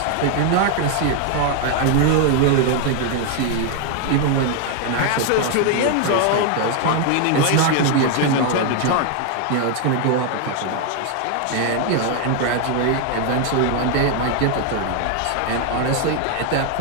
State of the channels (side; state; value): both; different; correlation 0.00